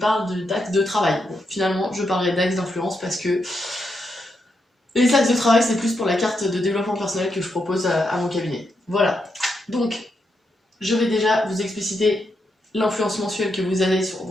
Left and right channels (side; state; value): both; normal; correlation 0.82